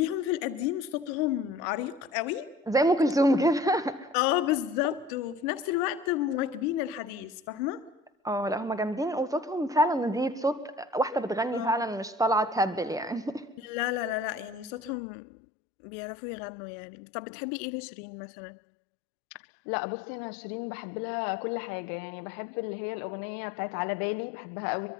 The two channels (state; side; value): drops out; right; at 15.0 s